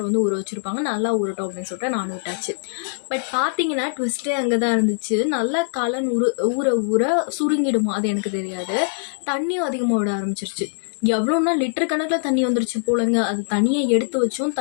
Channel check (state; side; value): silent; right; digital silence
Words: ஊற வச்சுருப்பாங்க. நல்லா ஊறட்டும் அப்படின்னு சொல்லிட்டு நானும் விட்டாச்சு. பட் பார்த்தீங்கன்னா ட்விஸ்ட்டே அங்கே தான் இருந்துச்சு. நல்லா காளான் ஊற ஊற சுருங்கிடுமா அது எனக்கு தெரியாது. தண்ணியும் அதிகமாக விட ஆரம்பிச்சிருச்சு. எவ்வளோன்னா லிட்டர் கணக்கில் தண்ணி வந்துருச்சு போலங்க. அது தனியாக எடுத்து வச்சும்